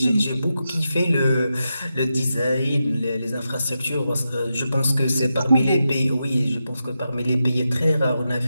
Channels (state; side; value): inverted; both; correlation -0.88